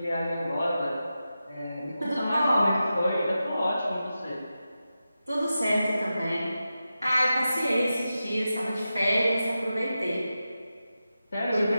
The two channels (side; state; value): both; inverted; correlation -0.92